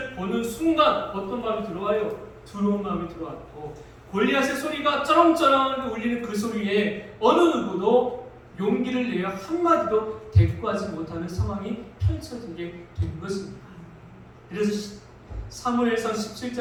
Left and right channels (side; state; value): both; identical; correlation 1.00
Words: 보는 순간 어떤 마음이 들어와요? 두려운 마음이 들어왔고, 골리앗의 소리가 쩌렁쩌렁 울리는 그 소리에 어느 누구도 용기를 내어 한마디도 대꾸하지 못하는 상황이 펼쳐지게 된 것입니다. 그래서 사무엘상